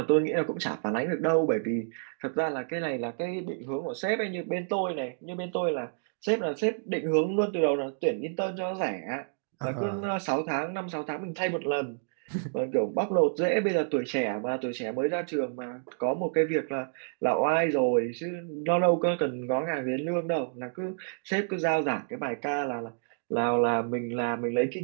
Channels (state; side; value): silent; left; digital silence